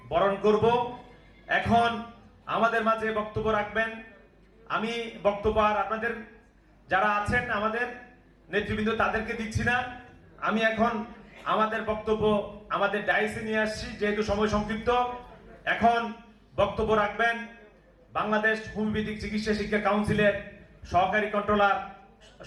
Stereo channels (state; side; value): identical; both; correlation 1.00